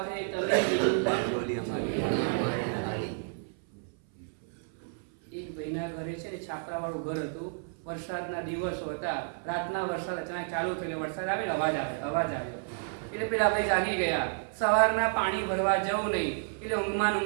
તમે એક ભાઈના ઘરે છે ને છાપરા વાળું ઘર હતું. વરસાદના દિવસો હતા. રાતના વરસાદ અચાનક ચાલુ થયો. વરસાદ આવે ને અવાજ આવ્યો. એટલે પેલા ભાઈ જાગી ગયા. સવારના પાણી ભરવા જવું નહીં એટલે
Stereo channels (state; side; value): silent; left; 57 dB below the other